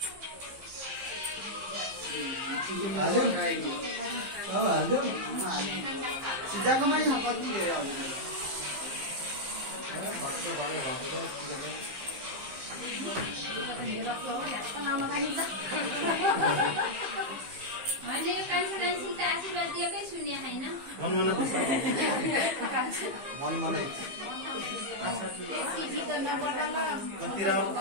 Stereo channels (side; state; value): left; late; 15 ms